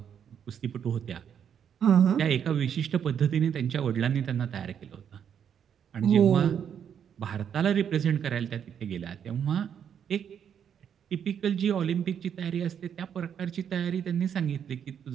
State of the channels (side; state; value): left; quieter; 8.4 dB